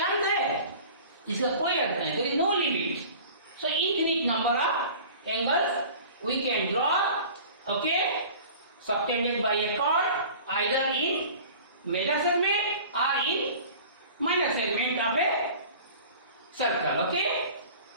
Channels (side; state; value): both; inverted; correlation -0.42